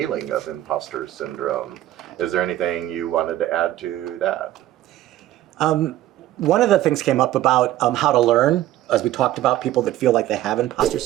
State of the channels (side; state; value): left; quieter; 14.1 dB